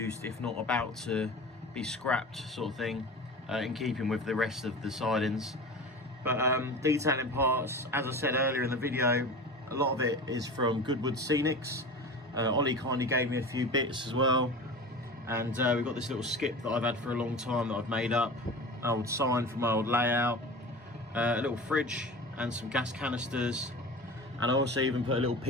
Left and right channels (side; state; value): both; normal; correlation 0.33